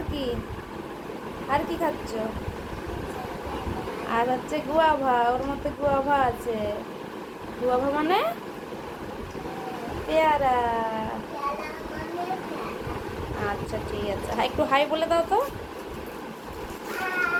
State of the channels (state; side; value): identical; both; correlation 1.00